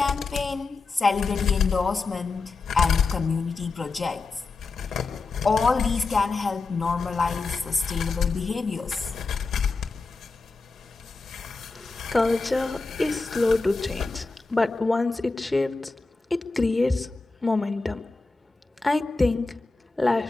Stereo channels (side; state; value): right; quieter; 3.9 dB